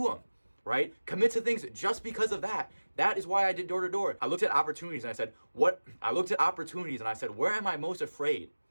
them. Right? Commit to things just because of that. That is why I did door to door. I looked at opportunities and I said, where am I most afraid?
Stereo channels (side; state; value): both; inverted; correlation -1.00